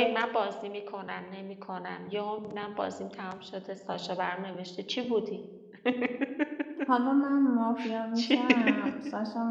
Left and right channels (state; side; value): identical; both; correlation 1.00